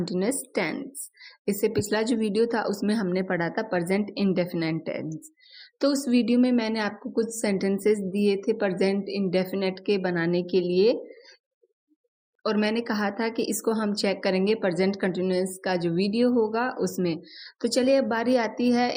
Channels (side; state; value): both; identical; correlation 1.00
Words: टेंस। इससे पिछला जो वीडियो था उसमें हमने पढ़ा था प्रेजेंट इंडेफिनिट टेंस। तो उस वीडियो में मैंने आपको कुछ सेंटेंसेस दिए थे प्रेजेंट इंडेफिनिट के बनाने के लिए, और मैंने कहा था कि इसको हम चेक करेंगे प्रेजेंट कंटीन्यूअस का जो वीडियो होगा उसमें। तो चलिए अब बारी आती है